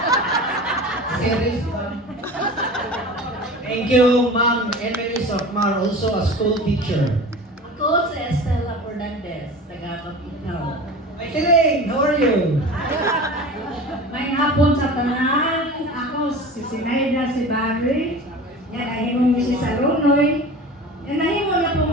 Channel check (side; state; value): both; normal; correlation 0.35